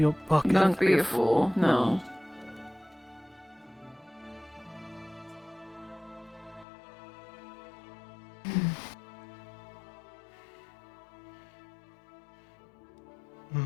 pocket. Don't be a fool, no.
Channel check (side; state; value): right; drops out; at 6.7 s